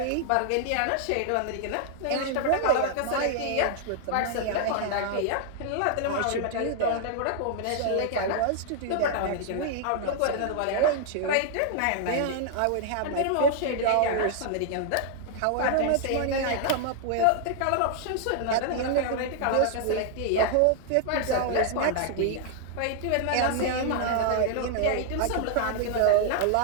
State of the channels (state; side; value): different; both; correlation 0.00